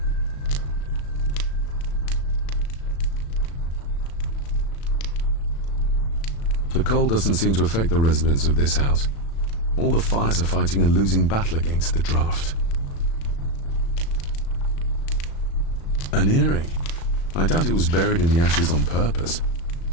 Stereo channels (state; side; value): late; right; 36 ms